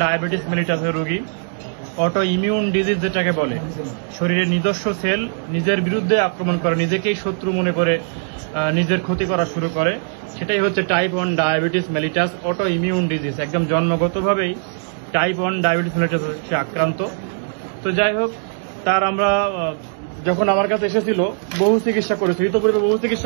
ডায়াবেটিস মেলিটাসের রোগী। অটো ইমিউন ডিজিজ যেটাকে বলে, শরীরের নিজস্ব সেল নিজের বিরুদ্ধে আক্রমণ করে, নিজেকেই শত্রু মনে করে নিজের ক্ষতি করা শুরু করে, সেটাই হচ্ছে type 1 diabetes mellitus auto immune disease. একদম জন্মগতভাবেই টাইপ 1 ডায়াবেটিস মেলিটাস সে আক্রান্ত। তো যাই হোক, তার আমরা যখন আমার কাছে এসেছিল বহু চিকিৎসা করেছি, ইতোপূর্বে বহু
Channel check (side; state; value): left; silent; digital silence